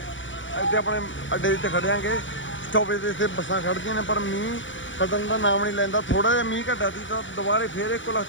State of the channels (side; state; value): right; late; 0.56 ms